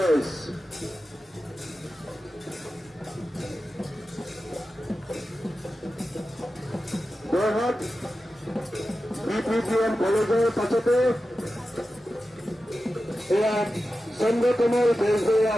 Jorhat BPBN কলেজৰ পাছতে এয়া চন্দ্ৰকমল বেজবৰুৱা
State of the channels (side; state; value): both; normal; correlation 0.92